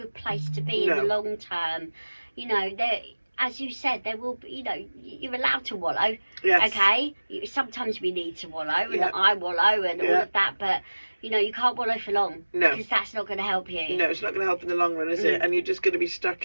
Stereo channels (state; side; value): inverted; both; correlation -1.00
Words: place to be in the long term. You know, there, as you said, there will be, you know, you're allowed to wallow. Yes. Okay? Sometimes we need to wallow and I wallow and all of that, but you know, you can't wallow for long. No. Because that's not going to help you. No, it's not going to help in the long run, is it? And you're just going to be